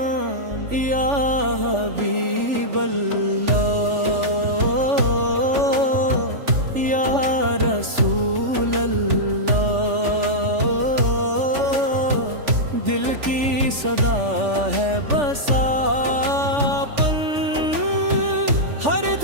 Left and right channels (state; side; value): late; left; 3.4 ms